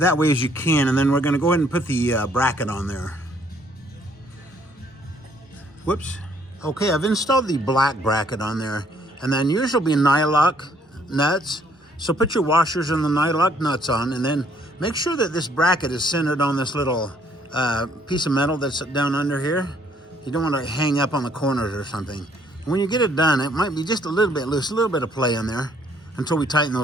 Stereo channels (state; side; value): normal; both; correlation 0.64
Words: way as you can, and then we're going to go ahead and put the bracket on there. Whoops. Okay, I've installed the black bracket on there. And then yours will be nylock nuts. So put your washers and the nylock nuts on, and then make sure that this bracket is centered on this little piece of metal that's down under here. You don't want to hang up on the corners or something. And when you get it done, it might be just a little bit loose, a little bit of play in there until we tighten